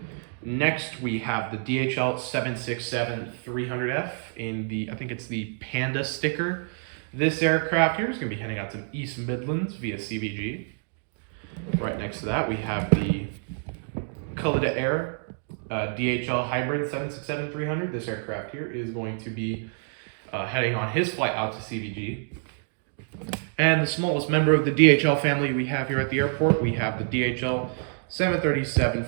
Next, we have the DHL 767-300F in the, I think it's the Panda sticker. This aircraft here is going to be heading out to East Midlands via CVG. Right next to that, we have the Khalida Air DHL Hybrid 767-300. This aircraft here is going to be heading on his flight out to CVG. And the smallest member of the DHL family we have here at the airport, we have the DHL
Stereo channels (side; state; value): left; silent; 60 dB below the other